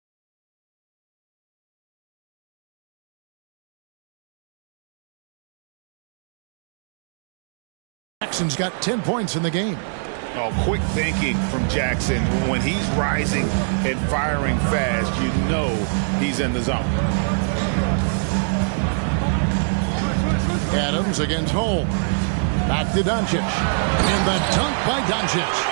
Jackson's got 10 points in the game. Oh, quick thinking from Jackson. When he's rising and firing fast, you know he's in the zone. Adams against Holmes. Back to Doncic. And the dunk by Doncic.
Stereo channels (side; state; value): left; silent; digital silence